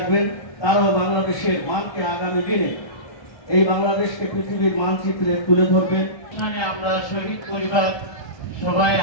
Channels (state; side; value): late; right; 1.3 ms